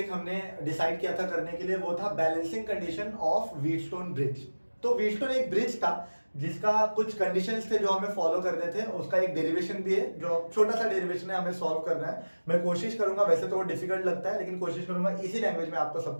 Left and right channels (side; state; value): both; inverted; correlation -1.00